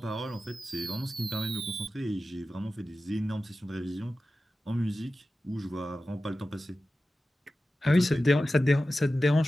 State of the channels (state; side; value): normal; both; correlation 0.94